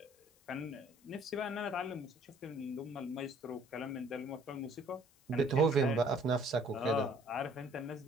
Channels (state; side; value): noise; left; hiss, 30 dB below the sound